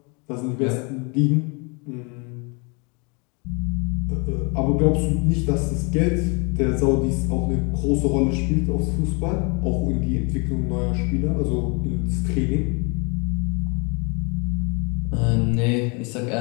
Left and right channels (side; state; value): right; quieter; 32.5 dB